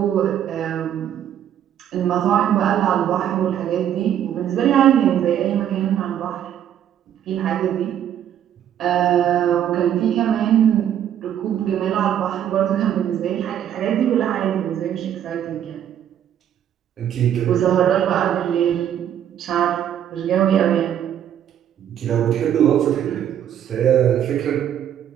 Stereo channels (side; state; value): left; quieter; 10.1 dB